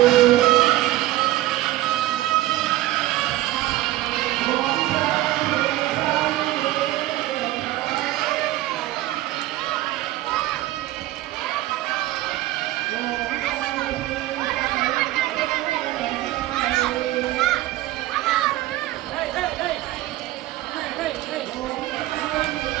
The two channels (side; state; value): left; quieter; 16.1 dB